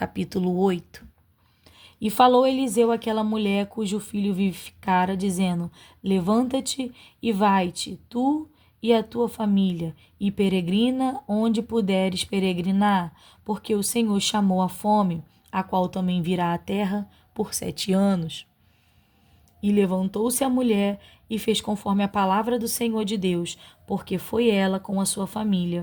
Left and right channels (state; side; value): identical; both; correlation 1.00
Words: 8. E falou Eliseu àquela mulher cujo filho vivificara, dizendo: Levanta-te e vai-te, tu e a tua família, e peregrina onde puderes peregrinar, porque o Senhor chamou a fome a qual também virá à terra por 7 anos. E levantou-se a mulher e fez conforme a palavra do Senhor de Deus, porque foi ela com a sua